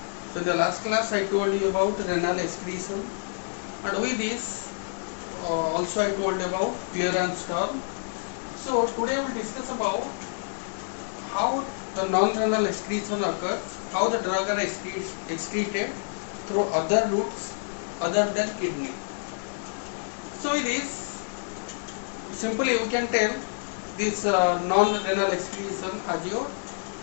So in the last class I told you about renal excretion, and with this also I told about clearance term. So today we will discuss about how the non-renal excretion occurs, how the drug are excreted through other routes other than kidney. So with this, simply we can tell this non-renal excretion as your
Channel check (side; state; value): right; silent; digital silence